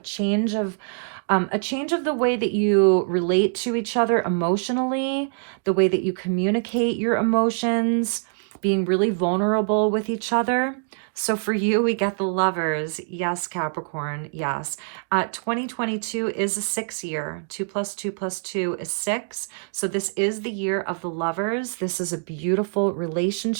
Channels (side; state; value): left; silent; digital silence